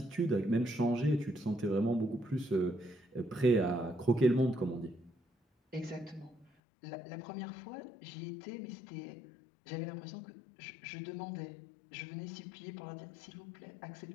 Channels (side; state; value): right; drops out; at 6.5 s